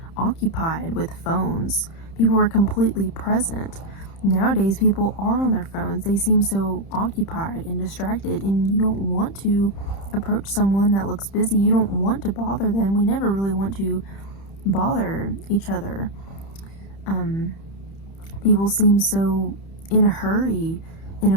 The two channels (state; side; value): late; right; 30 ms